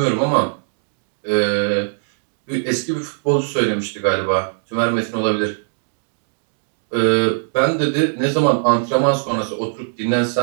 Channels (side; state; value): left; silent; digital silence